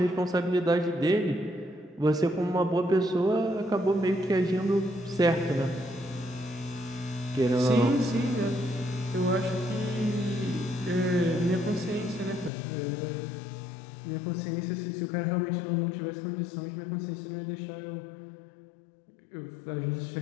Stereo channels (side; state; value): right; drops out; at 12.5 s